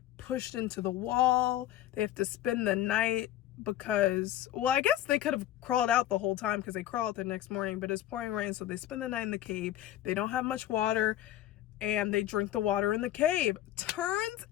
pushed into the wall. They have to spend the night because, well, I guess they could have crawled out the whole time because they crawl out the next morning, but it's pouring rain, so they spend the night in the cave. They don't have much water and they drink the water in the cave. Turns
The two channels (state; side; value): quieter; right; 13.1 dB